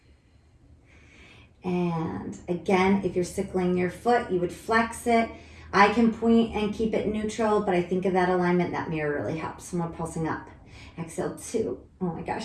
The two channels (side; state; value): both; identical; correlation 1.00